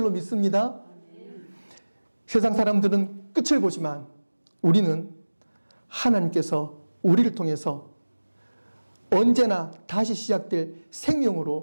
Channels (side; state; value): both; inverted; correlation -1.00